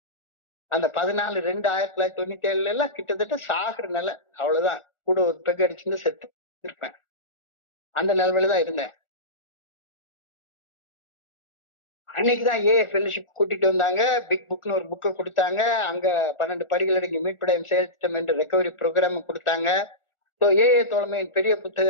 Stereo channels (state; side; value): late; right; 1.4 ms